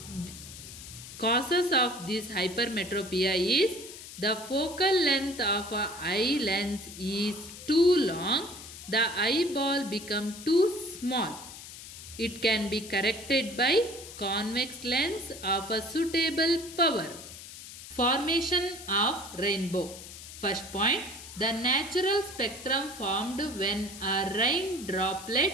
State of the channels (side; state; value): left; noise; hiss, 14 dB below the sound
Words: Causes of this hypermetropia is the focal length of an eye lens is too long, the eyeball become too small. It can be corrected by convex lens of a suitable power. Formation of rainbow. First point, the natural spectrum formed when a rain droplet